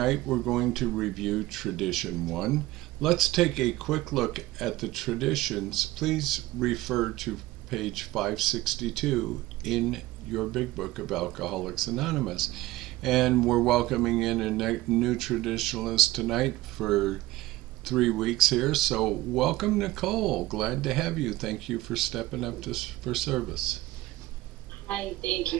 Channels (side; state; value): left; quieter; 17.5 dB